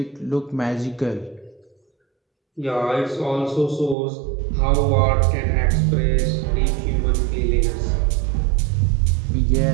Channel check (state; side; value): drops out; left; at 4.0 s